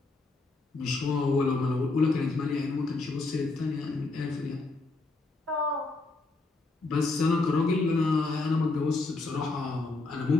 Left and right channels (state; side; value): quieter; right; 3.4 dB